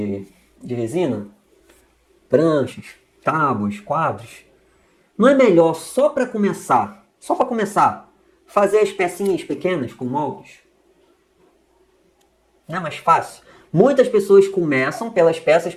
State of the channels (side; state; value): both; identical; correlation 1.00